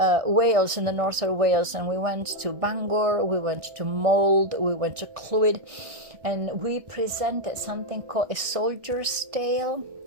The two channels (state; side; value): late; left; 1.6 ms